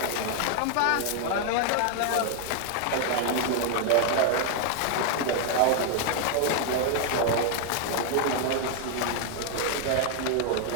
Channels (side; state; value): both; different; correlation 0.00